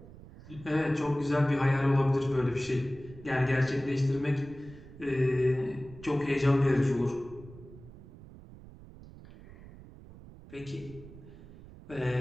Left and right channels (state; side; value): noise; right; rumble, 18 dB below the sound